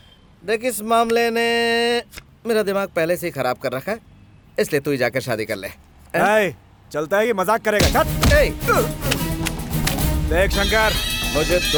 देख, इस मामले ने मेरा दिमाग पहले से ही खराब कर रखा है, इसलिए तू ही जाकर शादी कर ले। ए, चलता है कि मजाक करेगा? चल। ए, देख शंकर, मुझे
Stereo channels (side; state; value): both; identical; correlation 1.00